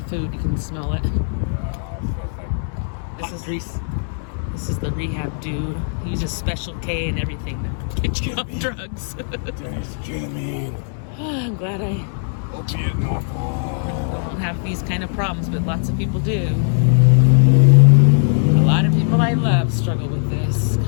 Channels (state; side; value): silent; right; digital silence